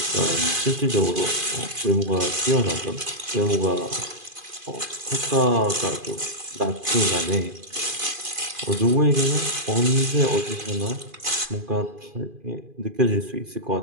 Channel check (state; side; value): late; left; 2.5 ms